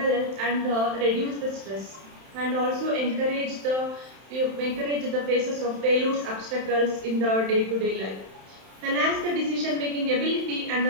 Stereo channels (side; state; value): left; late; 31 ms